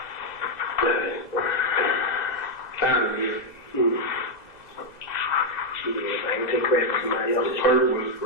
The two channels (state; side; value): late; right; 2.0 ms